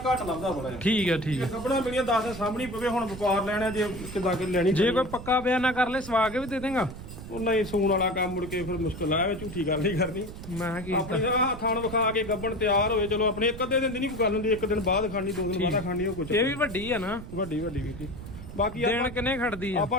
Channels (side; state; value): right; noise; rumble, 12 dB below the sound